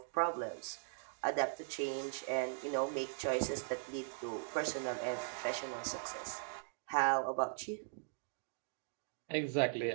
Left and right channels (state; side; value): silent; left; digital silence